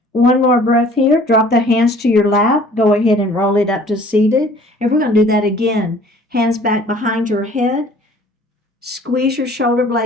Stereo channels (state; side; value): normal; both; correlation 0.52